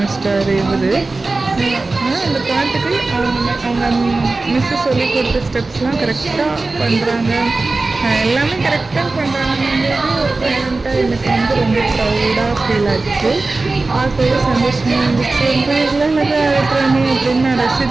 இவர். ஆனால் அந்த பாட்டுக்கு அவங்க மிஸ்ஸு சொல்லி கொடுத்த ஸ்டெப்ஸ்லாம் கரெக்டாக பண்ணுறாங்க, எல்லாமே கரெக்டாக பண்ணுறாங்கன்றது ஒரு பேரண்ட்டாக எனக்கு ரொம்ப ப்ரௌடாக ஃபீல் ஆச்சு. பார்க்கவே சந்தோஷமாக இருந்துச்சு. ரொம்ப ஆடுறானே அப்படின்னு நான்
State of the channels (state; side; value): quieter; left; 3.4 dB